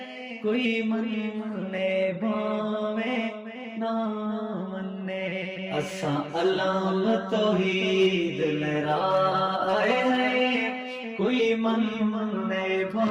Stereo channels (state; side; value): identical; both; correlation 1.00